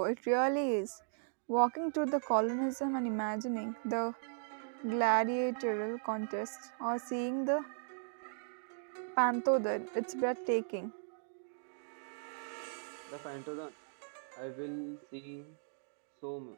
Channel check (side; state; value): left; silent; digital silence